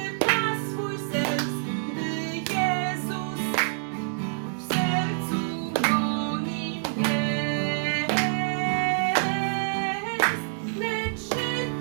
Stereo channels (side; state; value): left; silent; 59 dB below the other